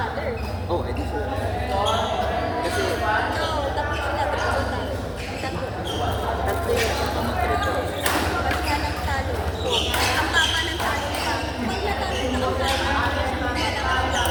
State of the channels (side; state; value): both; identical; correlation 1.00